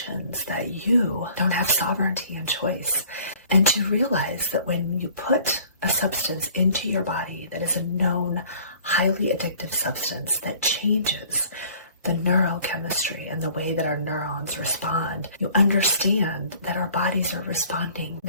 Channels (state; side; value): inverted; both; correlation -0.53